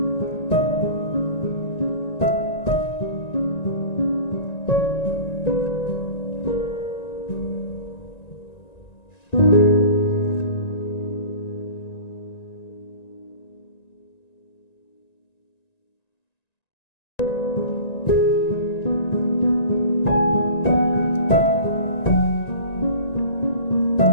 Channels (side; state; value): right; late; 1.9 ms